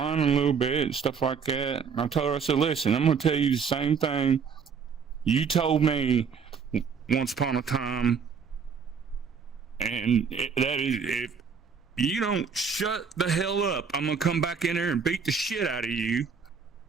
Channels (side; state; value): left; quieter; 6.1 dB